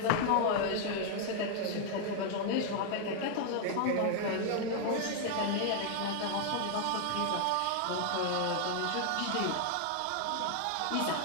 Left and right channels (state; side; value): different; both; correlation 0.00